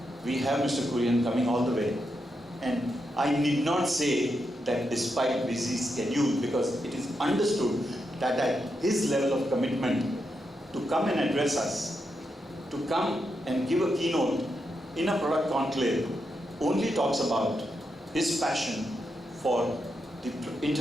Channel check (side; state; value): both; normal; correlation 0.84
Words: we have Mr. Kurian coming all the way. And I need not say that despite busy schedule, because it is understood that at his level of commitment to come and address us, to come and give a keynote in a product conclave, only talks about his passion for the